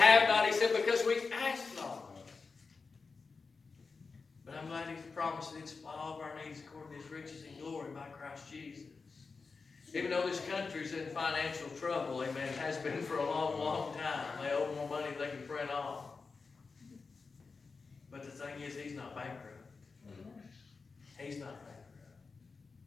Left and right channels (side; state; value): right; quieter; 4.5 dB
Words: not. He said, because we ask not. But I'm glad He's promised that He'd supply all of our needs according to His riches and glory by Christ Jesus. Even though this country's in financial trouble, amen, it has been for a long, long time. They owe more money than they can print off. But the thing is, He's not bankrupt. He's not bankrupt.